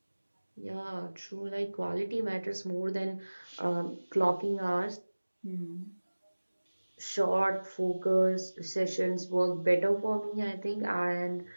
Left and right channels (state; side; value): inverted; both; correlation -1.00